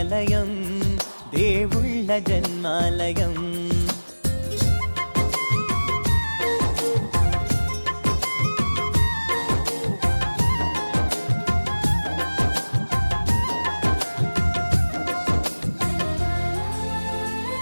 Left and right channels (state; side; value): inverted; both; correlation -1.00